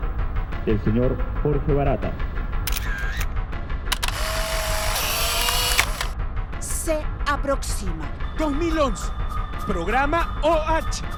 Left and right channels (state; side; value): identical; both; correlation 1.00